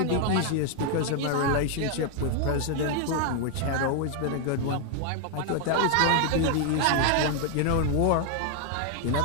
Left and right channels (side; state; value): both; different; correlation 0.00